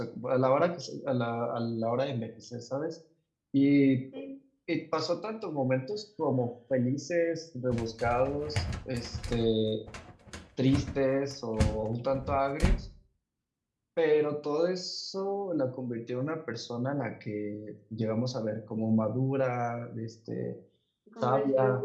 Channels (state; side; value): identical; both; correlation 1.00